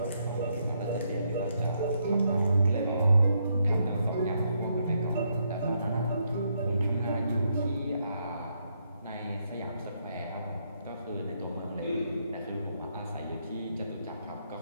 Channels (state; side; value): inverted; both; correlation -0.76